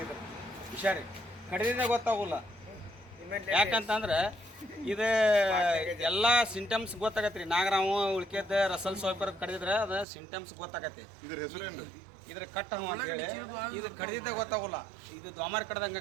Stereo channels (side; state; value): left; drops out; at 10.1 s